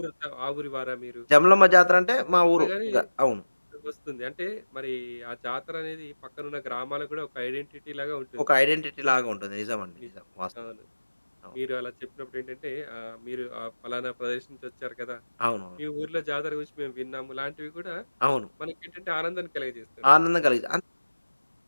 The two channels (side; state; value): both; inverted; correlation -1.00